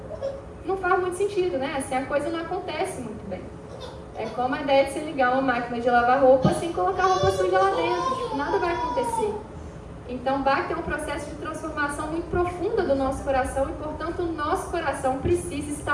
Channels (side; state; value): both; identical; correlation 1.00